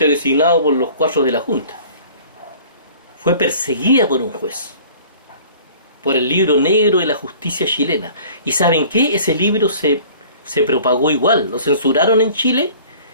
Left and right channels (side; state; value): both; inverted; correlation -0.48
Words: designado por los 4 de la Junta. Fue perseguida por un juez, por el libro negro de la justicia chilena. ¿Y saben qué? Ese libro se propagó igual, lo censuraron en Chile,